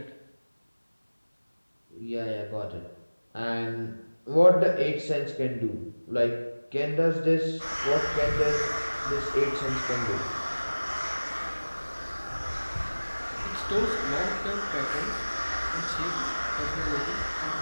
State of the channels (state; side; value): inverted; both; correlation -1.00